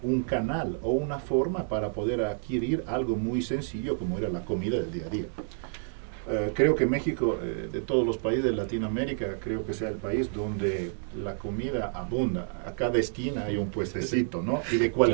canal o una forma para poder adquirir algo muy sencillo como era la comida del día a día. Creo que México, de todos los países de Latinoamérica, creo que sea el país donde la comida abunda. A cada esquina hay un puestecito, ¿no? Y de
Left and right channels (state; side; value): silent; left; digital silence